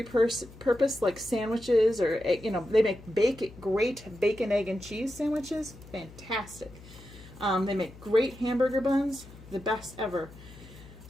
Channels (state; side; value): noise; left; hum, 19 dB below the sound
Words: purpose, like sandwiches, or, they make great bacon, egg, and cheese sandwiches. Fantastic. They make great hamburger buns, the best ever.